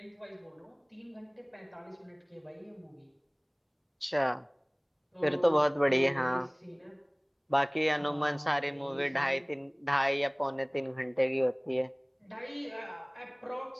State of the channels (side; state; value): both; identical; correlation 1.00